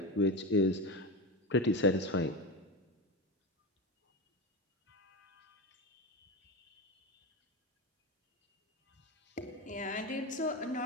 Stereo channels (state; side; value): normal; both; correlation 0.19